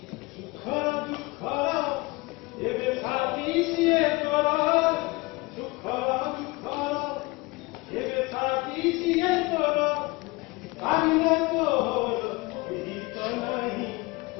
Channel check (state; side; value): quieter; right; 24.1 dB